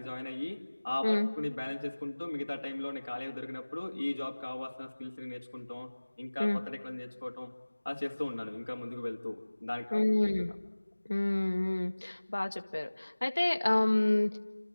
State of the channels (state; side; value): inverted; both; correlation -1.00